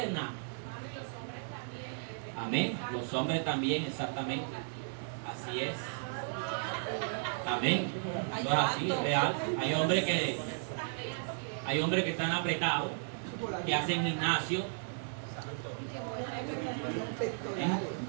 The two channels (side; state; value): left; silent; digital silence